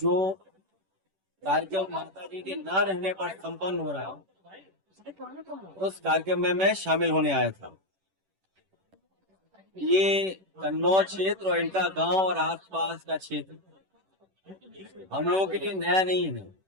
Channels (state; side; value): late; left; 10 ms